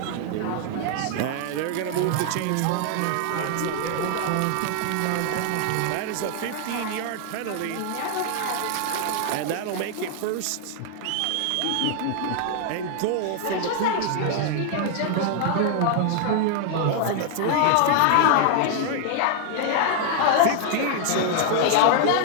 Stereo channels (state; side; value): different; both; correlation 0.00